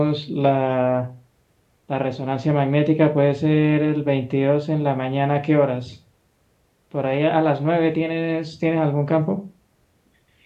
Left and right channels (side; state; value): both; identical; correlation 1.00